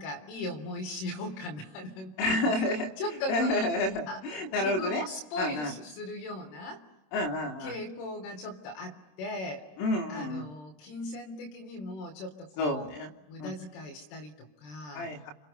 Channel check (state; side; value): late; right; 27 ms